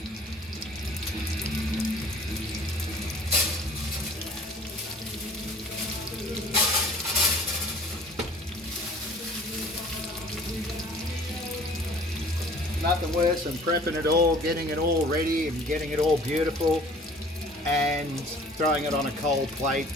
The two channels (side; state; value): both; normal; correlation 0.50